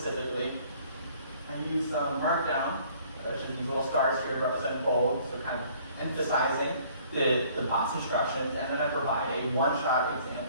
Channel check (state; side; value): inverted; both; correlation -0.57